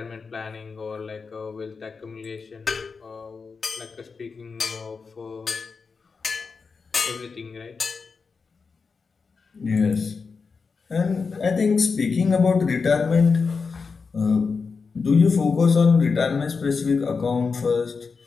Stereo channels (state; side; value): quieter; right; 4.9 dB